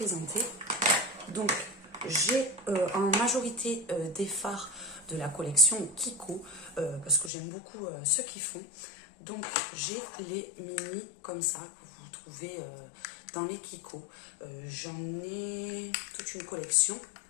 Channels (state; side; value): drops out; right; at 7.3 s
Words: Donc, j'ai en majorité des fards de la collection Kiko, parce que j'aime beaucoup ceux qui font. Donc, j'ai les mini comme ça, que vous trouvez dans les Kiko. J'en ai toute une collection.